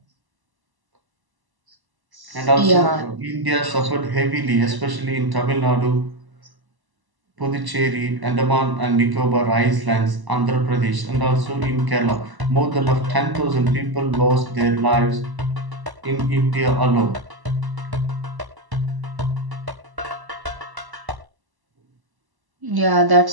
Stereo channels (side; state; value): left; late; 1.0 ms